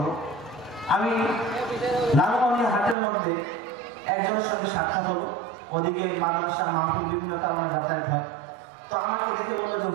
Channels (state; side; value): drops out; left; at 3.0 s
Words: আমি লালমনির হাটের মধ্যে একজনের সঙ্গে সাক্ষাৎ হলো। ওদিকে মাদ্রাসা মাহফিল বিভিন্ন কারণে যাতায়াত হয়। তো আমাকে দেখে বললো যে